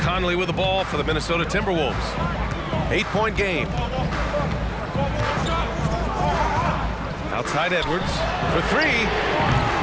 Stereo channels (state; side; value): identical; both; correlation 1.00